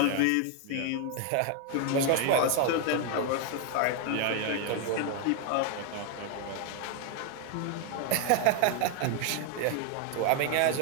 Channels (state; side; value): different; both; correlation 0.00